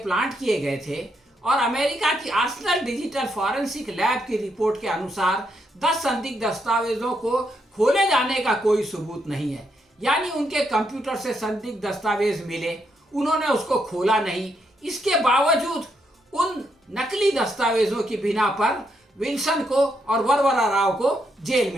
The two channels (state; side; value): normal; both; correlation 0.78